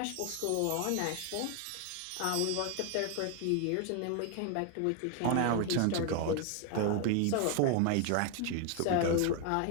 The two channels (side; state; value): both; different; correlation 0.00